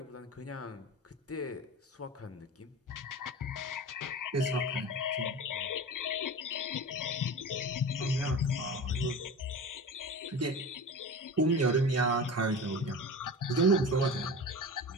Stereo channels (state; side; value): normal; both; correlation 0.32